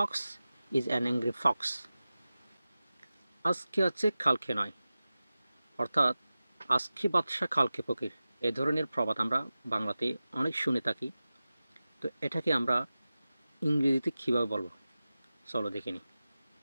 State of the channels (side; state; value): both; inverted; correlation -0.95